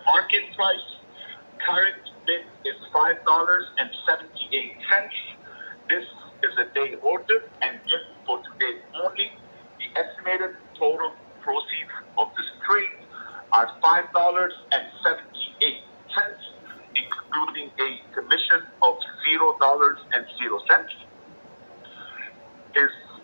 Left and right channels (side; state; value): both; inverted; correlation -1.00